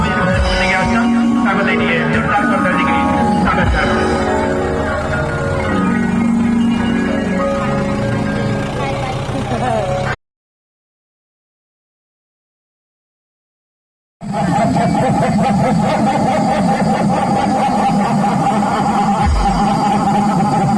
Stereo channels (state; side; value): identical; both; correlation 1.00